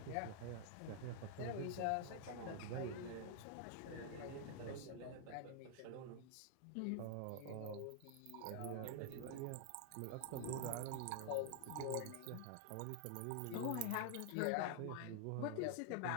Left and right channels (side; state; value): both; different; correlation 0.00